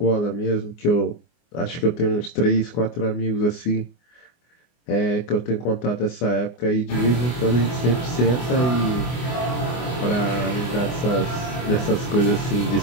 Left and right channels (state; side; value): late; right; 24 ms